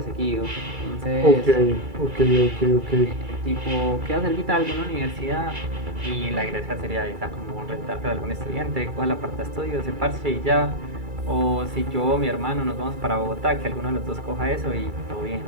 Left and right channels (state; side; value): late; left; 2.3 ms